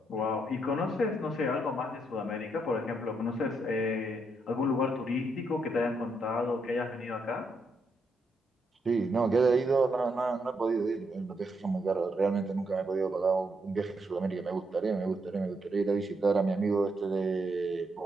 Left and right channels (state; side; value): normal; both; correlation 0.79